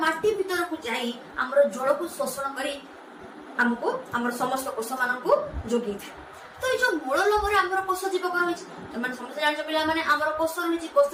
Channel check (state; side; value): identical; both; correlation 1.00